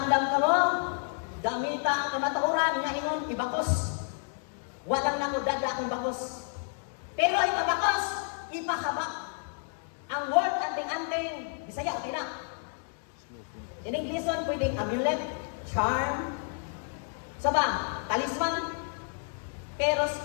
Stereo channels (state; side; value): silent; right; 58 dB below the other